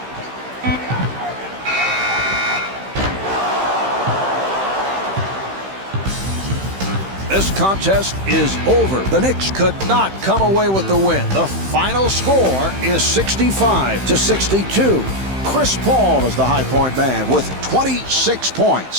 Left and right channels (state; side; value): late; left; 15 ms